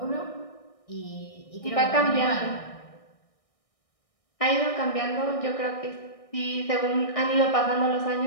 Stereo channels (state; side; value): late; right; 1.6 ms